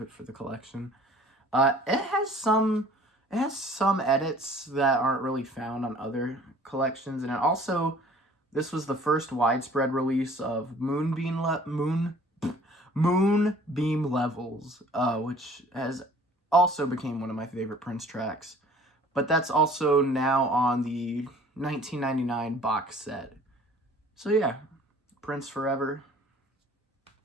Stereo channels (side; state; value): both; normal; correlation 0.51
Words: it for the collection. It has some edits that aren't really found on other collections, and it also, this was the first widespread release of Moonbeam Levels, which has also became one of my favorite Prince tracks. But that's also now on the 1999 box set. So yeah, Prince Forever.